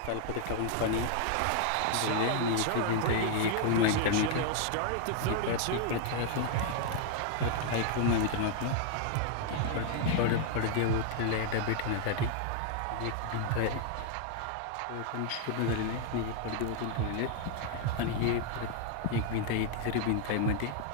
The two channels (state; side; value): different; both; correlation 0.00